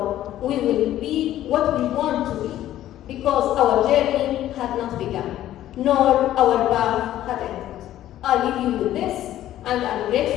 We will be what we want to be, because our journey had not begun, nor our path had ended. I leave you with this, and I'm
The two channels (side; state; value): right; quieter; 13.0 dB